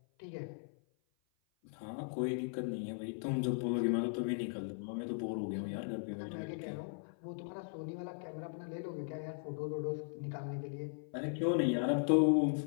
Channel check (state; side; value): silent; right; 52 dB below the other